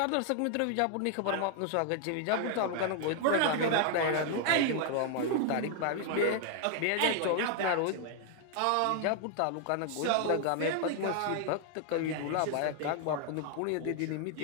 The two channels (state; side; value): different; both; correlation 0.00